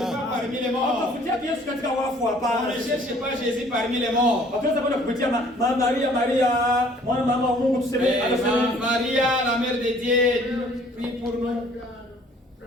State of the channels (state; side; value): normal; both; correlation 0.56